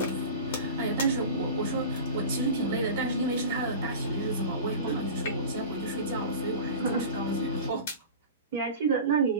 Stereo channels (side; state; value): both; inverted; correlation -0.33